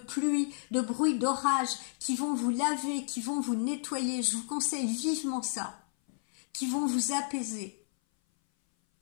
de bruit d'orage, qui vont vous laver, qui vont vous nettoyer, je vous conseille vivement ça, qui vont vous apaiser.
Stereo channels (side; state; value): right; silent; 57 dB below the other